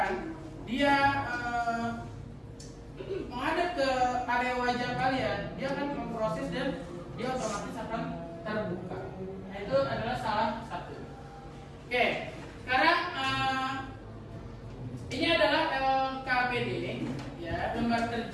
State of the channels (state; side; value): identical; both; correlation 1.00